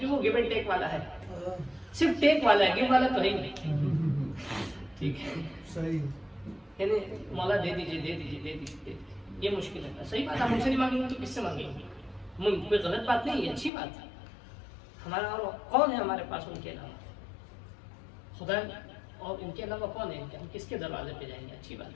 جو وہ گیو اینڈ ٹیک والا ہے، صرف ٹیک والا ہے، گیو والا تو ہے ہی نہیں ٹھیک ہے. صحیح، یعنی مولا دے دیجیے دے دیجیے دے دیجیے، یہ مشکل ہے. صحیح بات ہے، ہم سے نہیں مانگیں گے تو کس سے مانگیں گے؟ کوئی غلط بات نہیں ہے، اچھی بات ہے. ہمارا اور کون ہے ہمارے پاس ان کے علاوہ؟ خدا، اور ان کے علاوہ کون ہے؟ ہم کس کے دروازے پہ جائیں گے؟ اچھی بات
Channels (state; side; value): drops out; right; at 13.7 s